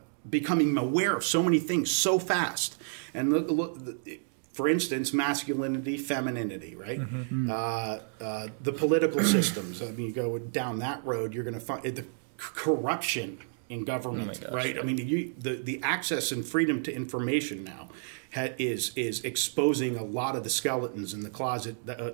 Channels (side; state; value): left; silent; digital silence